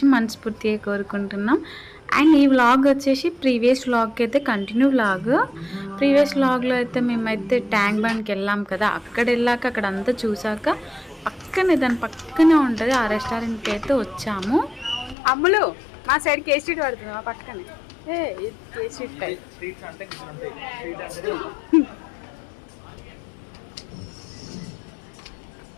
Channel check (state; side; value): drops out; right; at 15.2 s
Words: మనస్ఫూర్తిగా కోరుకుంటున్నాం. అండ్ ఈ వ్లాగ్ వచ్చేసి ప్రీవియస్ వ్లాగ్కి అయితే కంటిన్యూ వ్లాగ్. ప్రీవియస్ వ్లాగ్లో అయితే మేమైతే ట్యాంక్ బండ్కి వెళ్ళాం కదా, అక్కడ వెళ్ళాక అక్కడ అంతా చూసాక దాని పక్కనే ఉంటుంది ఆ రెస్టారెంట్కి అయితే వచ్చాము. అమ్ములు మా సైడ్ కేసీ స్ట్రీట్ పడుతుంది, మా పక్కనే